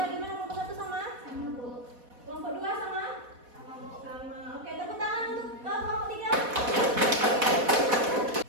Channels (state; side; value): late; left; 4.1 ms